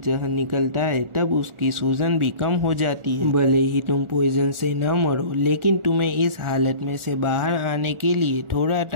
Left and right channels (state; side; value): late; left; 1.4 ms